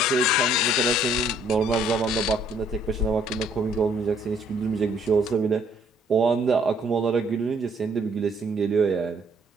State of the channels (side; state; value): both; normal; correlation 0.64